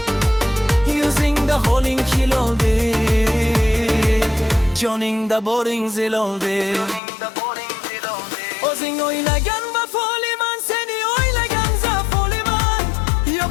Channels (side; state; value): right; drops out; at 7.0 s